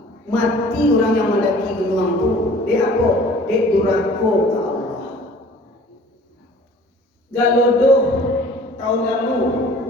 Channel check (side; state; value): both; normal; correlation 0.49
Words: mati orang yang mendaki gunung itu, dia apa? Dia durako ke Allah. Galodo tahun lalu